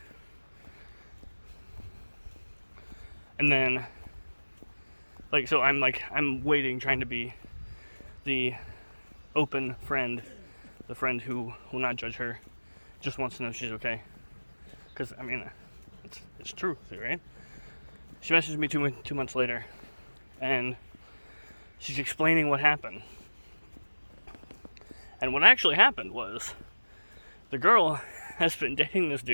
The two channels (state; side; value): inverted; both; correlation -1.00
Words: And then, like, so I'm waiting, trying to be the open friend, the friend who will not judge her, just wants to know she's okay. Because, I mean, it's true, right? She messaged me 2 months later, and she's explaining what happened. And what actually happened was, the girl has been dating this